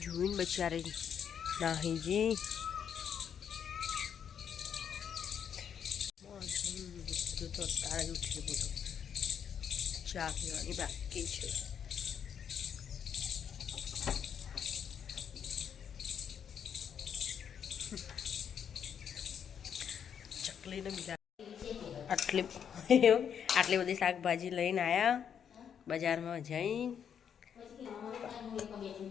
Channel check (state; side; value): quieter; right; 8.1 dB